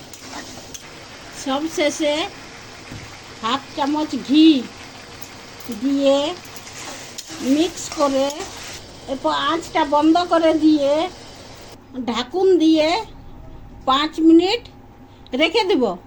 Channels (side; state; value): both; identical; correlation 1.00